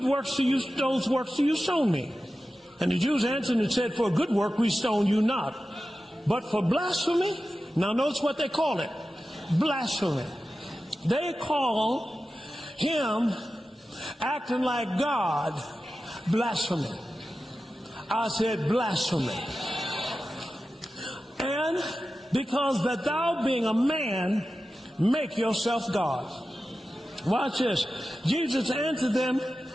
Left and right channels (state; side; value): normal; both; correlation 0.93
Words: works those works do you stone me? And the Jews answered and said, for a good work we stone you not, but for blasphemy. Now notice what they call it. Blasphemy. They call him acting like God blasphemy. I said blasphemy. And because that thou being a man, make yourself God. Watch this. Jesus answered them,